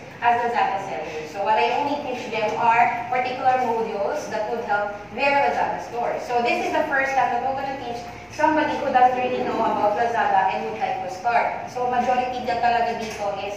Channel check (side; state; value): both; identical; correlation 1.00